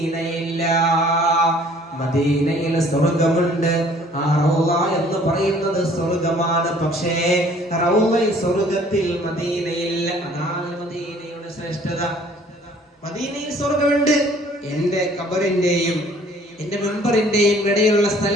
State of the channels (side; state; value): both; normal; correlation 0.55